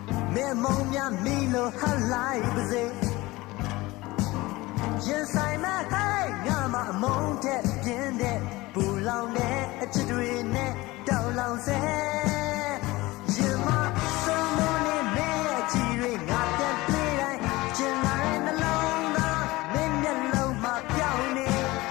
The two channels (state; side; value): quieter; right; 20.4 dB